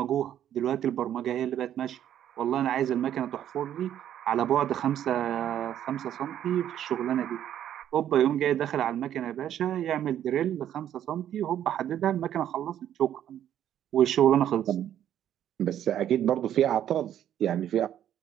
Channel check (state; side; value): quieter; left; 10.7 dB